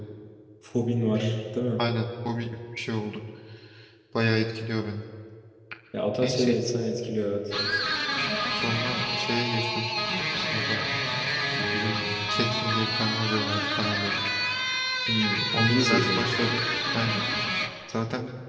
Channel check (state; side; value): identical; both; correlation 1.00